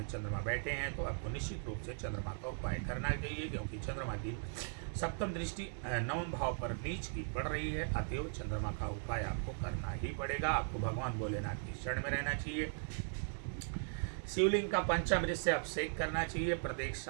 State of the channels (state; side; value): silent; left; 52 dB below the other